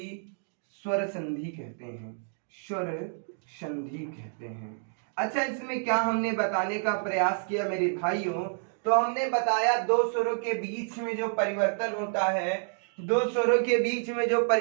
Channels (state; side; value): silent; left; digital silence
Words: स्वर संधि कहते हैं, स्वर संधि कहते हैं। अच्छा, इसमें क्या हमने बताने का प्रयास किया मेरे भाइयों, तो हमने बताया दो स्वरों के बीच में जो परिवर्तन होता है, दो स्वरों के बीच में जो